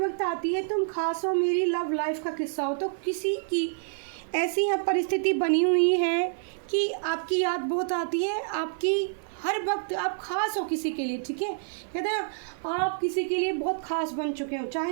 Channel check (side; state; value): left; silent; digital silence